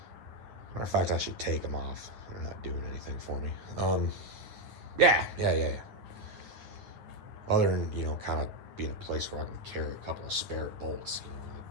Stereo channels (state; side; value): late; left; 10 ms